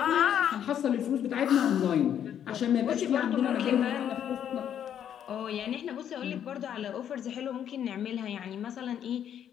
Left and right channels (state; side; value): quieter; right; 9.5 dB